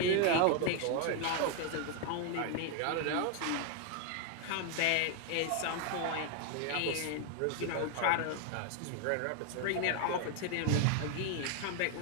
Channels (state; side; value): different; both; correlation 0.00